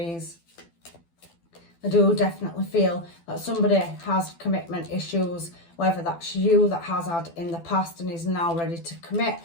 I do definitely feel that somebody has commitment issues, whether that's you that has had in the past and is now ready to commit,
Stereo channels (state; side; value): late; right; 12 ms